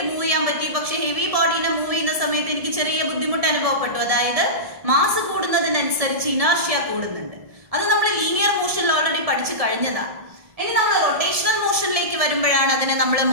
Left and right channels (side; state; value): left; late; 1.7 ms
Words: മൂവ് ചെയ്യാൻ പറ്റി. പക്ഷെ ഹെവി ബോഡിനെ മൂവ് ചെയ്യുന്ന സമയത്ത് എനിക്ക് ചെറിയ ബുദ്ധിമുട്ട് അനുഭവപ്പെട്ടു. അതായത് മാസ് കൂടുന്നതിനനുസരിച്ച് ഇനർഷ്യ കൂടുന്നുണ്ട്. അത് നമ്മൾ ലീനിയർ മോഷനിൽ ഓൾറെഡി പഠിച്ചു കഴിഞ്ഞതാണ്. ഇനി നമ്മൾ റൊട്ടേഷണൽ മോഷനിലേക്ക് വരുമ്പോഴാണ് അതിനെ നമ്മൾ